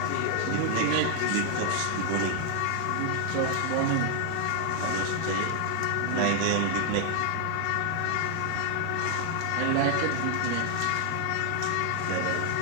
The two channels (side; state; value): both; different; correlation 0.00